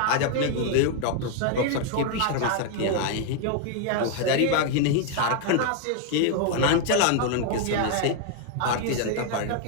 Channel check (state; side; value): different; both; correlation 0.00